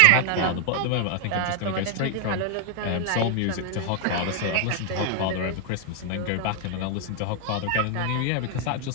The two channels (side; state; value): both; different; correlation 0.01